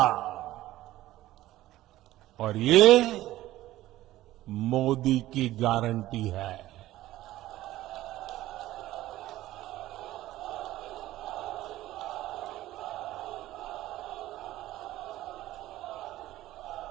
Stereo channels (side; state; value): left; quieter; 15.5 dB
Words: और ये मोदी की गारंटी है।